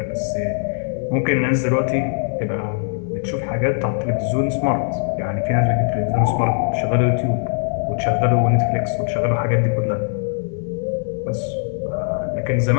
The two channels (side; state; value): right; silent; 65 dB below the other